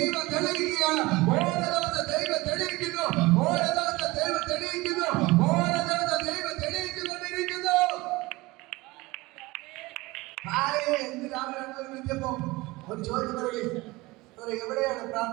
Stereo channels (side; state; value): left; quieter; 21.5 dB